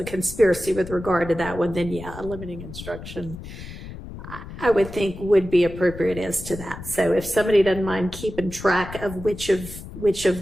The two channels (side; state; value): left; noise; rumble, 12 dB below the sound